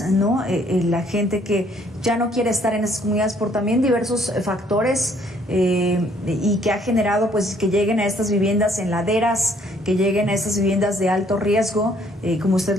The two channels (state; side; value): normal; both; correlation 0.64